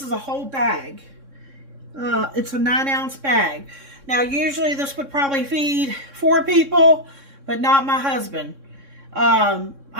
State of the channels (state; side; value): late; left; 3.6 ms